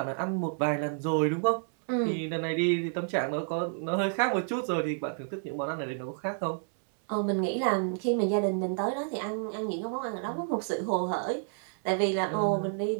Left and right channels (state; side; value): silent; left; 58 dB below the other